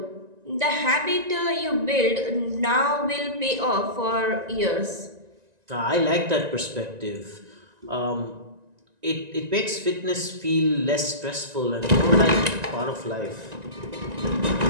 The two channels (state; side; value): late; left; 1.9 ms